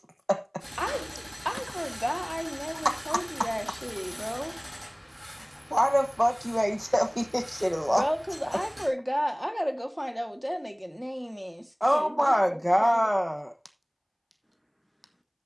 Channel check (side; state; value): both; identical; correlation 1.00